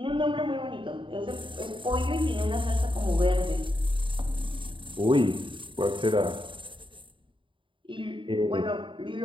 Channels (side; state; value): left; late; 0.24 ms